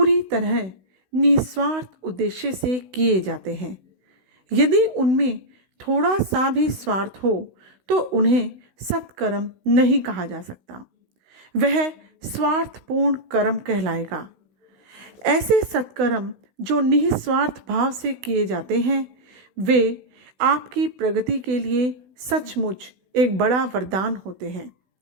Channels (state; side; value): late; left; 16 ms